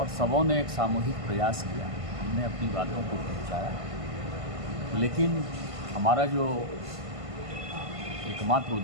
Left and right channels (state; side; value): late; left; 1.5 ms